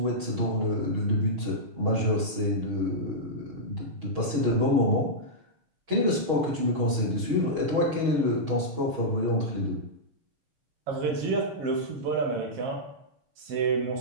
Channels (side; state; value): left; late; 6.3 ms